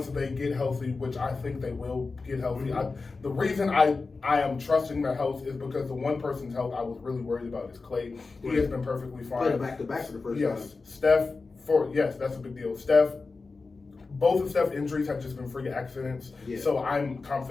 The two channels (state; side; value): quieter; right; 4.1 dB